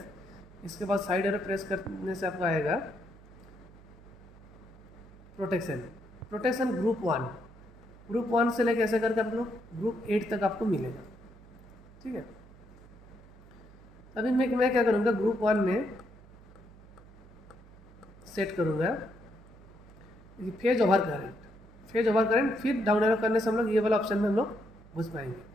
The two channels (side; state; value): right; noise; hum, 22 dB below the sound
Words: इसके बाद साइड एरो प्रेस करने से आपका आएगा प्रोटेक्शन। प्रोटेक्शन ग्रुप वन से लेकर ऐसे करके आप लोग ग्रुप 8 तक आपको मिलेगा। ठीक है, अभी मैं क्या करूँगा, ग्रुप 1 में सेट करूँगा फेज ओवर करंट। फिर डाउन एरो करने से हम लोग ये वाला ऑप्शन में हम लोग घुस पाएंगे।